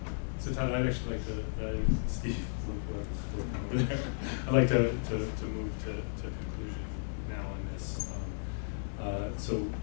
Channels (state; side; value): silent; right; digital silence